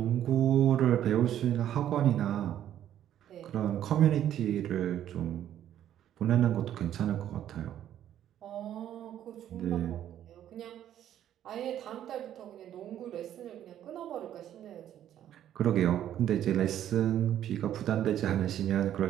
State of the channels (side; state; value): left; quieter; 11.1 dB